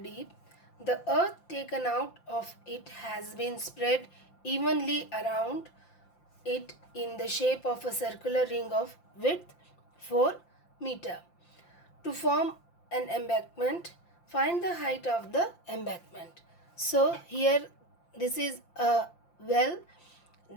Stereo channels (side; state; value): right; late; 5.8 ms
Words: The earth taken out of it has been spread evenly around it in the shape of a circular ring of width 4 meter. To form an embankment, find the height of the embankment. So here this is a well.